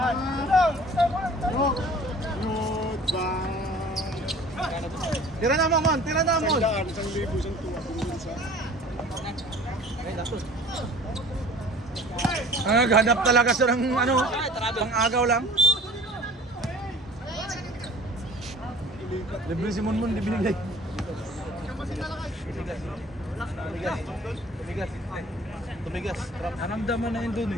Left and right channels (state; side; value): normal; both; correlation 0.47